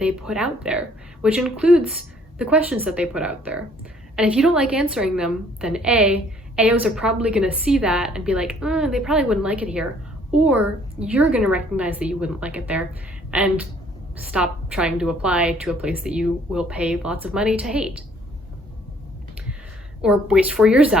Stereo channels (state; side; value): normal; both; correlation 0.60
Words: put out there, which includes the questions that they put out there. And if you don't like answering them, then AOs are probably going to see that and be like, they probably wouldn't like it here. Or you're going to recognize that you wouldn't like it there and stop trying to apply to a place that you will pay lots of money to hate. Or waste 4 years